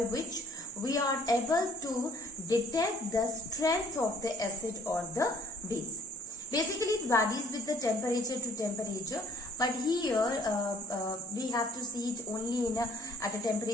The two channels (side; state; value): both; normal; correlation 0.58